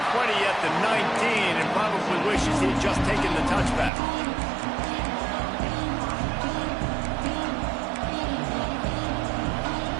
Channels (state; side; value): drops out; left; at 3.9 s